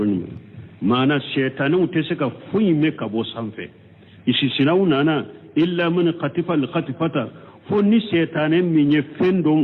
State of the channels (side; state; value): both; identical; correlation 1.00